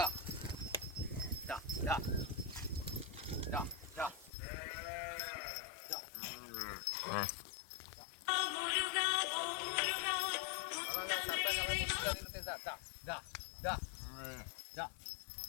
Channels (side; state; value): right; drops out; at 4.3 s